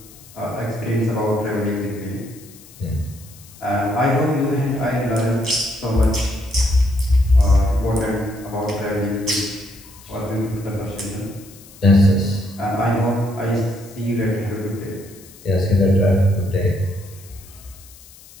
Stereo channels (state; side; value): noise; left; hiss, 22 dB below the sound